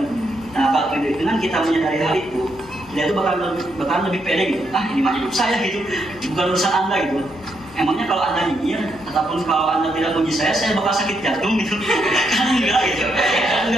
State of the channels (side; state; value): both; normal; correlation 0.78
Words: Nah, kalau dengan kita menyadari hal itu, kita itu bakal lebih pede gitu. Ini mah hidup saya gitu, bukan urusan Anda gitu. Emangnya kalau Anda nyinyir ataupun kalau Anda tidak muji saya bakal sakit jantung gitu. Kan enggak gitu. Kan